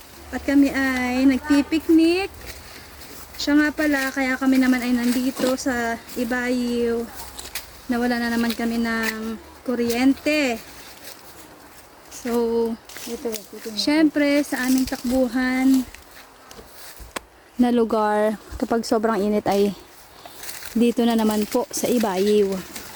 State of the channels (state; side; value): identical; both; correlation 1.00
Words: At kami ay nagpipiknik. Siya nga pala, kaya kami naman ay nandito sa Ibayo. Nawala na naman kami ng kuryente. So, syempre sa aming takbuhan na lugar, kapag sobrang init ay dito na naman po sa Ibayo.